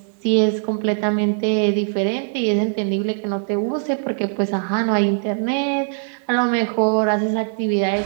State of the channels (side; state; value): left; silent; digital silence